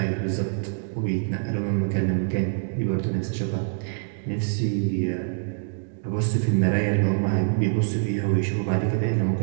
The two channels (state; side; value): silent; left; digital silence